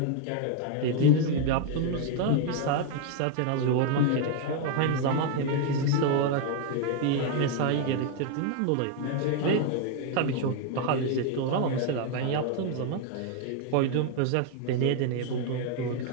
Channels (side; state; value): both; different; correlation 0.00